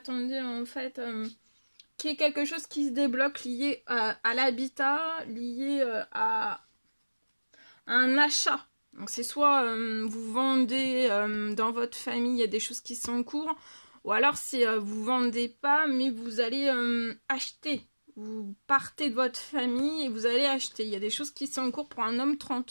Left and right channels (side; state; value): both; inverted; correlation -1.00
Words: en fait qu'il y ait quelque chose qui se débloque lié à l'habitat, lié à un achat. Donc c'est soit vous vendez dans votre famille, il y a des choses qui sont en cours, ou alors c'est vous vendez pas, mais vous allez acheter. Vous partez de votre famille et vous allez acheter. Il y a des choses qui sont en cours pour un homme